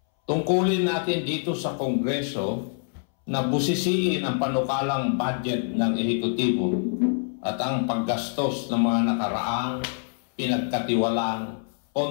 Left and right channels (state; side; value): silent; right; 61 dB below the other